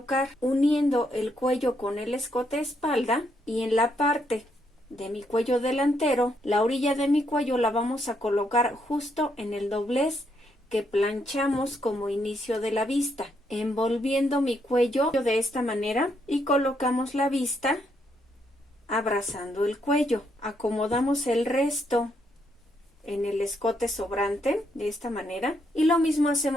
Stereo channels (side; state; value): both; normal; correlation 0.76